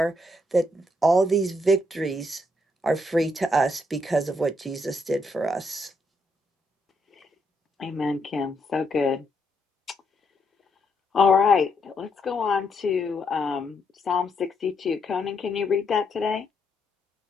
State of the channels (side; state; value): both; normal; correlation 0.77